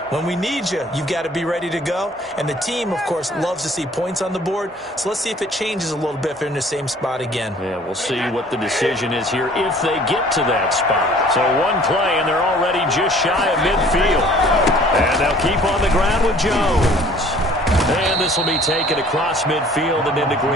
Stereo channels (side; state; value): both; normal; correlation 0.53